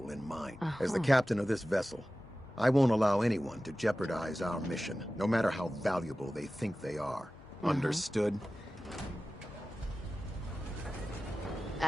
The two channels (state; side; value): normal; both; correlation 0.96